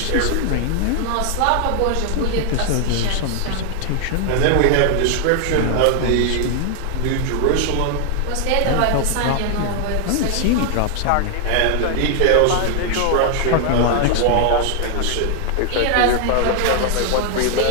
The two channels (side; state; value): both; different; correlation 0.00